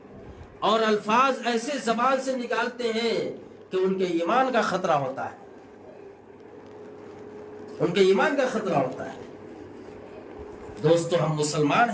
اور الفاظ ایسے زبان سے نکالتے ہیں کہ ان کے ایمان کا خطرہ ہوتا ہے، ان کے ایمان کا خطرہ ہوتا ہے۔ دوستو ہم مسلمان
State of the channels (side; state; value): both; identical; correlation 1.00